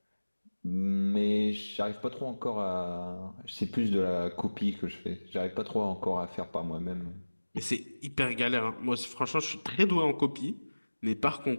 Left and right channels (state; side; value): inverted; both; correlation -1.00